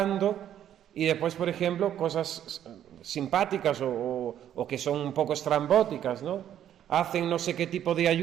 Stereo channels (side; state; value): left; quieter; 10.6 dB